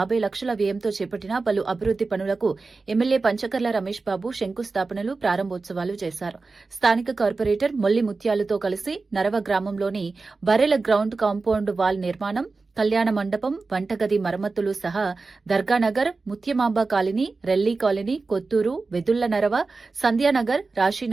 వ్యయంతో చేపట్టిన పలు అభివృద్ది పనులకు ఎమ్మెల్యే పంచకర్ల రమేష్ బాబు శంకుస్థాపనలు, ప్రారంభోత్సవాలు చేశారు. స్థానిక కార్పొరేటర్ మొల్లి ముత్యాలుతో కలిసి నరవ గ్రామంలోని బర్రెల గ్రౌండ్ కాంపౌండ్ వాల్ నిర్మాణం, కళ్యాణ మండపం, వంటగది మరమ్మతులు సహా దర్గానగర్, Mutyamamba colony, Relli colony, Kotturu, Vedulla Narava, సంధ్యానగర్,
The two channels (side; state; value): left; quieter; 3.9 dB